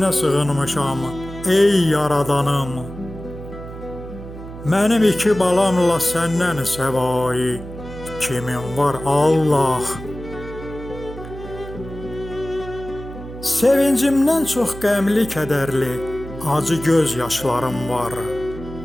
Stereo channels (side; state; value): right; noise; hum, 13 dB below the sound